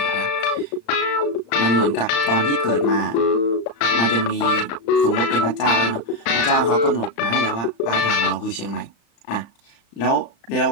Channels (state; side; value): late; right; 35 ms